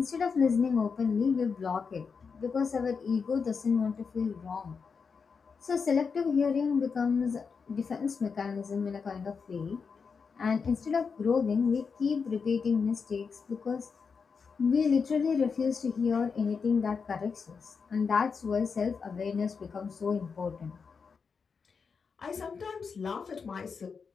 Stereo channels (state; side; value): quieter; right; 5.5 dB